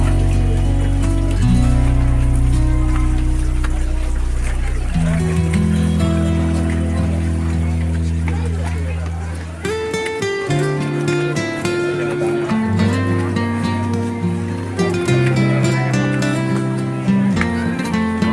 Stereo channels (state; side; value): identical; both; correlation 1.00